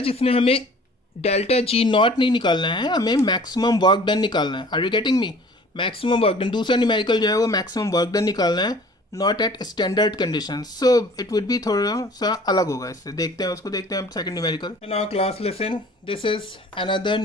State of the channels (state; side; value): normal; both; correlation 0.49